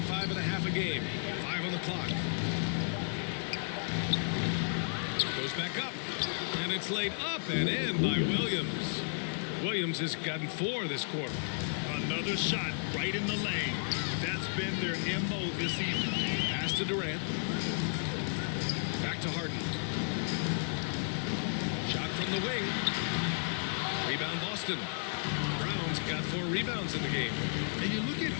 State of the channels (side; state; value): right; silent; 56 dB below the other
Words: and a half a game. 5 on the clock. Goes back up. And it's laid up and in by Williams. Williams has gotten 4 this quarter. Another shot right in the lane. That's been their MO this evening. Pass to Durant. Back to Harden. Shot from the wing. Rebound Boston. Brown's got 4 rebounds in the game. And you look at